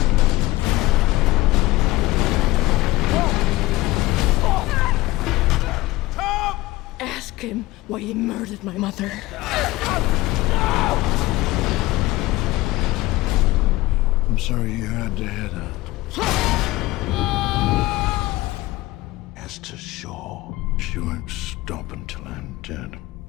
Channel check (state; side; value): quieter; right; 18.7 dB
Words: Tom! Ask him why he murdered my mother. I'm sorry you had to hear that. As to shore, she won't stop until I'm dead.